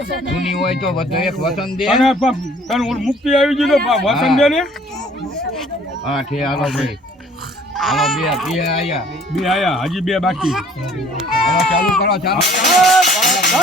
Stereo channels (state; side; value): normal; both; correlation 0.56